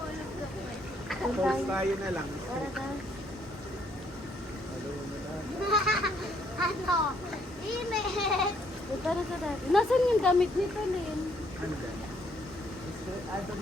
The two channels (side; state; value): both; normal; correlation 0.68